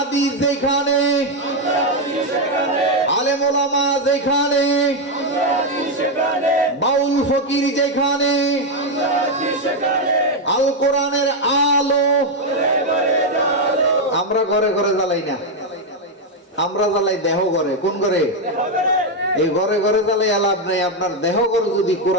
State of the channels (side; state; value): both; normal; correlation 0.04